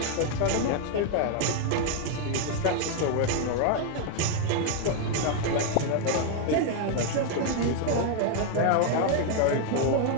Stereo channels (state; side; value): different; both; correlation 0.00